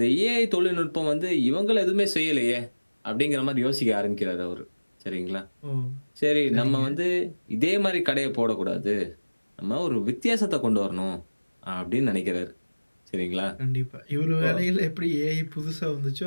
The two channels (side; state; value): both; inverted; correlation -1.00